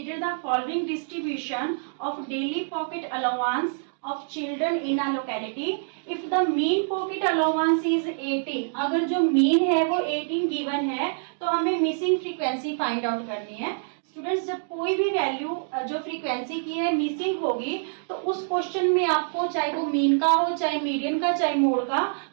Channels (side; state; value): left; silent; digital silence